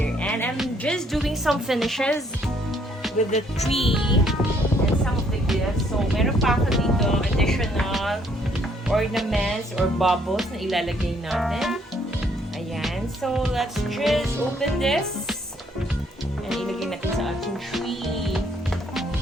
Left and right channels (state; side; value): normal; both; correlation 0.67